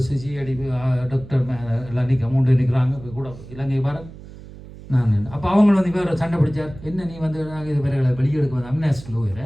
சிஐடி டாக்டர் எல்லாம் நிற்கிறாங்க கூட இலங்கை பாரத் நான். அப்போ அவங்க வந்து வேறு சண்டை பிடிச்சார். என்ன நீ வந்து நாங்கள் இது வேறு வெளியெடுக்க வந்து அம்னாஸ்டில்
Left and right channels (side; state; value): right; noise; hum, 16 dB below the sound